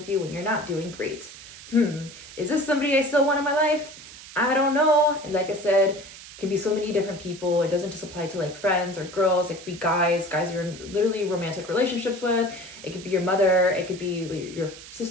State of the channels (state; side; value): noise; right; hiss, 16 dB below the sound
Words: you when you're not doing great. Is this somebody I still want in my life? I don't know. And like I said, it can be so many different people. It doesn't just apply to like friends or girls. It could be guys you're in literally romantic relationships with. It could be your mother. It could be your